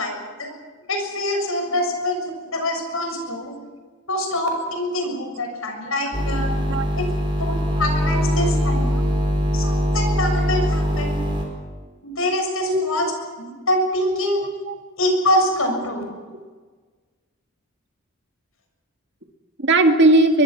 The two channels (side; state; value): both; normal; correlation 0.34